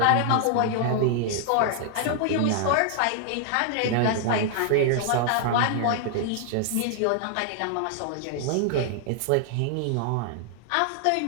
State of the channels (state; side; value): different; both; correlation -0.01